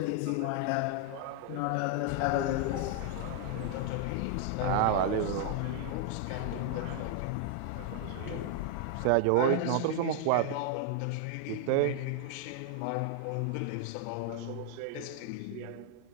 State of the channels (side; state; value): both; different; correlation 0.00